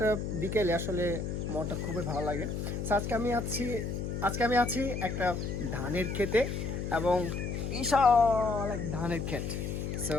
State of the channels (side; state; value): left; noise; hum, 3 dB below the sound